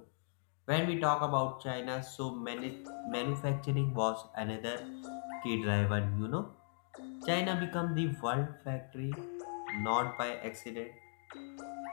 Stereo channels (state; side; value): silent; right; digital silence